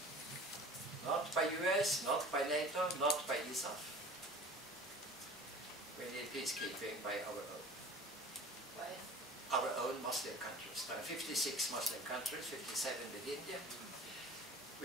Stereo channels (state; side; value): normal; both; correlation 0.41